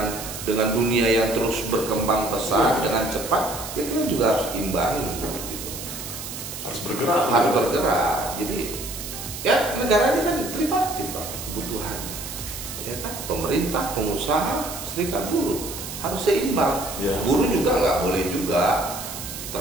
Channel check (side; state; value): right; noise; hiss, 9 dB below the sound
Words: dunia yang terus berkembang pesat dengan cepat. Ya kalian juga harus imbangi, gitu. Harus bergerak. Jadi ya negara ini kan tripartit Pak kebutuhannya, ya kan pemerintah, pengusaha, serikat buruh. Harus seimbang. Ya. Buruh juga nggak boleh juga